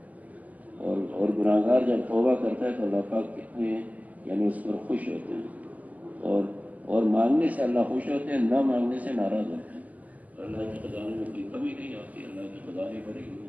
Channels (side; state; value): left; late; 0.077 ms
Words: اور گناہگار جب توبہ کرتا ہے تو اللہ پاک کتنے یعنی اس پر خوش ہوتے ہیں، اور مانگنے سے اللہ خوش ہوتے ہیں، نہ مانگنے سے ناراض ہوتے ہیں۔ اللہ کے خزانے میں کوئی کمی نہیں آتی، اللہ کے خزانے بھرے ہوئے